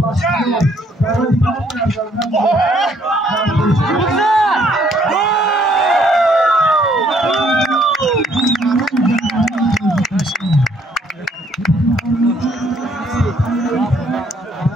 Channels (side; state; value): both; normal; correlation 0.66